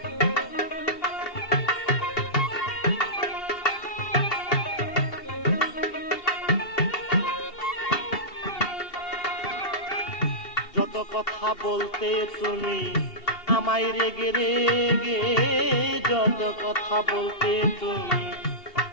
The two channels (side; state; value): right; late; 2.7 ms